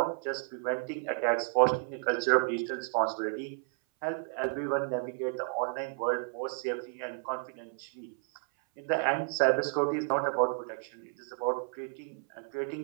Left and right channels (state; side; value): silent; left; 56 dB below the other